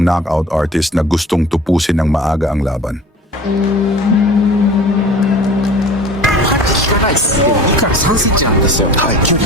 knockout artist na gustong tupusin ng maaga ang laban.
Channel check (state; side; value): normal; both; correlation 0.42